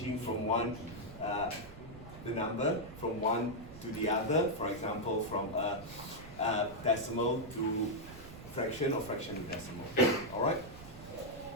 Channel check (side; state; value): right; noise; rumble, 15 dB below the sound